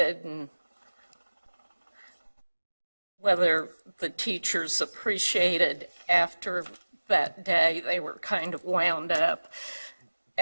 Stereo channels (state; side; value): inverted; both; correlation -1.00